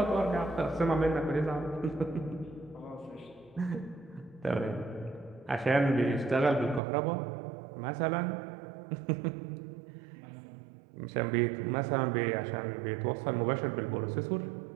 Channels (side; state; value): left; drops out; at 6.8 s